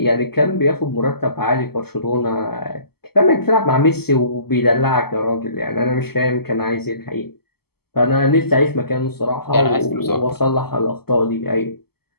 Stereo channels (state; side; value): late; right; 0.96 ms